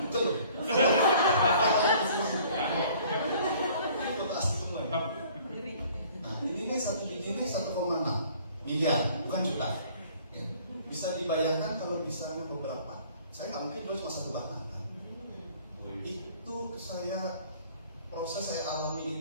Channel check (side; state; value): both; inverted; correlation -0.54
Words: Google. Foto asli semua ya. Nah, ini satu biji ini 1,6 miliar, bukan juta. Ya. Bisa dibayangkan kalau misalnya beberapa. Saya nggak mungkin jual cuma 1 batang kan. Itu proses saya